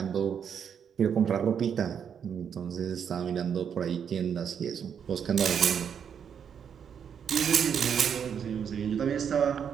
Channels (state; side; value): quieter; left; 7.7 dB